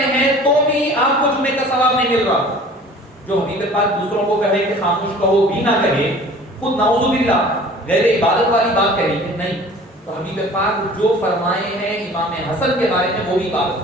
ہیں تو بھی آپ کو جمعے کا ثواب نہیں مل رہا۔ جو حبیب پاک دوسروں کو کہے کہ خاموش کہو بھی نہ کہے، خود نعوذ باللہ غیر عبادت والی بات کہے کہ نہیں، تو حبیب پاک جو فرمائے ہیں امام حسن کے بارے میں وہ بھی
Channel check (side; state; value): both; normal; correlation 0.46